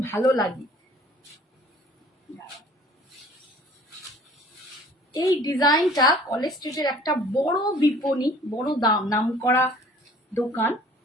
ভালো লাগে। এই ডিজাইনটা কলেজ স্ট্রিটের একটা বড় বিপণী, বড় নামকরা দোকান,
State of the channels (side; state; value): both; normal; correlation 0.51